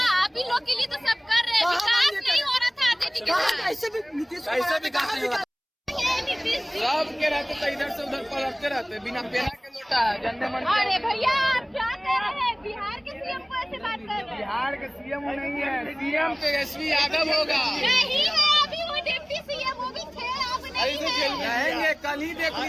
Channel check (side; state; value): both; identical; correlation 1.00